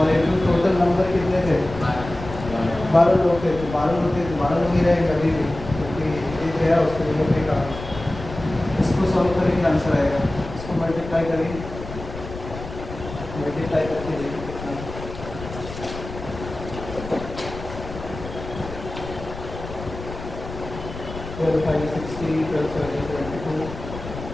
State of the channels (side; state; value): left; noise; rumble, 11 dB below the sound